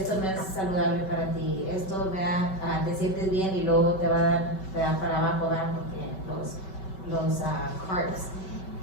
no es saludable para ti, esto, ¿verdad? Te sientes bien y luego te va a dar, te da para abajo, ¿verdad? Porque los carbs.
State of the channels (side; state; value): right; late; 5.3 ms